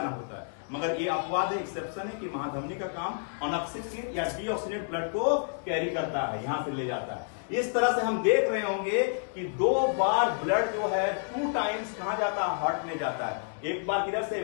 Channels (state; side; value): silent; right; digital silence